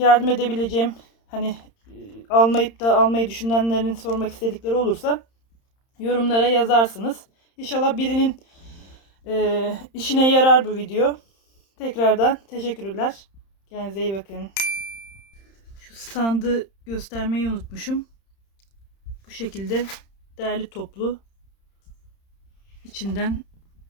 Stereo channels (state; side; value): late; right; 31 ms